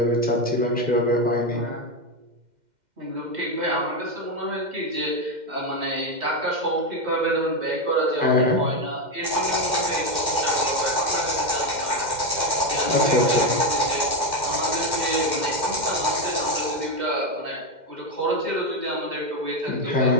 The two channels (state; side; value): late; left; 2.1 ms